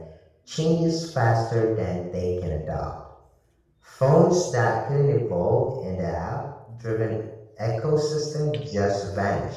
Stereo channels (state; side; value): identical; both; correlation 1.00